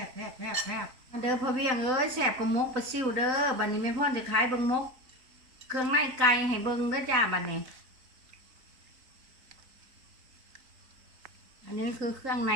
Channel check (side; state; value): left; late; 3.9 ms